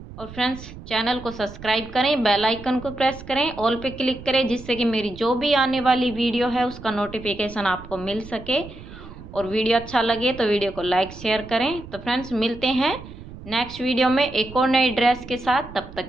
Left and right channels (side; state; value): right; noise; rumble, 15 dB below the sound